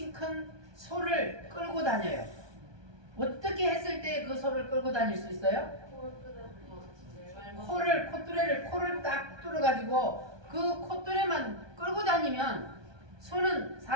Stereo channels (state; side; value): late; left; 1.2 ms